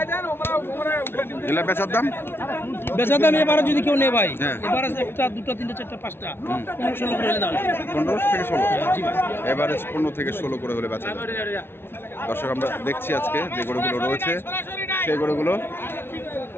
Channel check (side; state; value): right; late; 0.11 ms